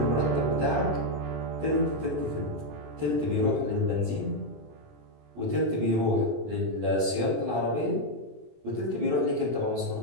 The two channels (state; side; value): late; left; 20 ms